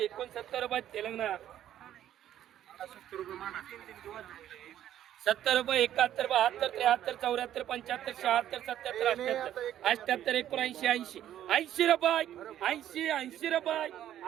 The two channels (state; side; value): quieter; left; 11.5 dB